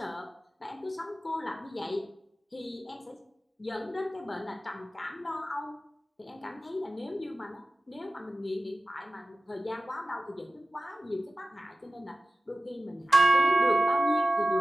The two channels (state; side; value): normal; both; correlation 0.96